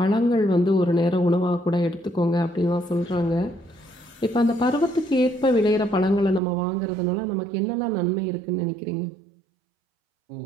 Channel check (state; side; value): drops out; left; at 6.4 s